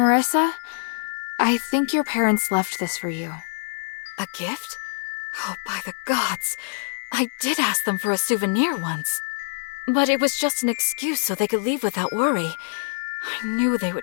I think your parents left this for you. A gift? Oh, by the gods. I did ask them for a souvenir once. But it was just an excuse so they could leave without worry. I knew they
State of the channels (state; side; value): silent; right; 60 dB below the other